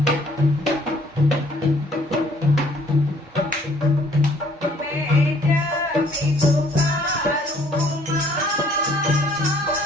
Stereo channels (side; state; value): both; normal; correlation 0.60